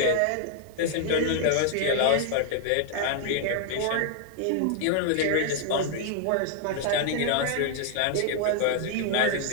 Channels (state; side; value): different; both; correlation 0.00